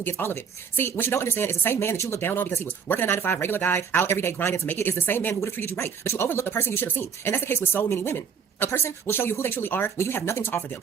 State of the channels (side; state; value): left; quieter; 6.7 dB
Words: gets all of it. See, what you don't understand is the same man that you look down on because he was working a 9 to 5, regular guy, out every day grinding to make it, is the same man who would have treated you right, but you overlook the person you should have seen. And that's the case with so many women. A person will show you who they truly are when you have nothing to offer them.